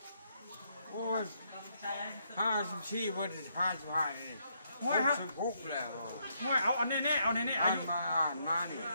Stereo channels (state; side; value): inverted; both; correlation -0.75